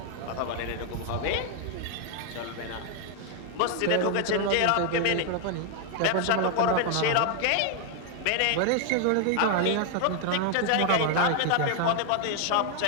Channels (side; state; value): both; different; correlation 0.00